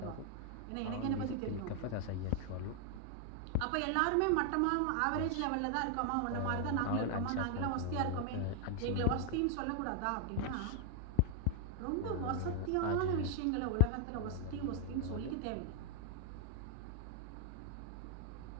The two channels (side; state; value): both; different; correlation 0.00